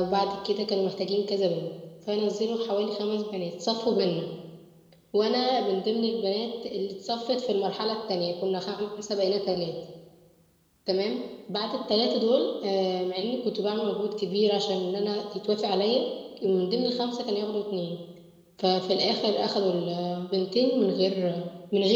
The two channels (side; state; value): both; identical; correlation 1.00